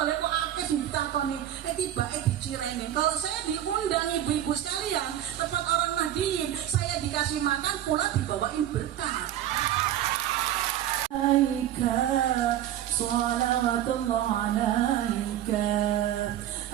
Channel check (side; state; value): left; quieter; 11.9 dB